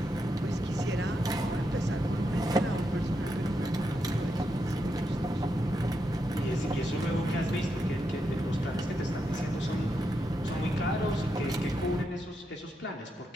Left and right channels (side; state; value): both; normal; correlation 0.83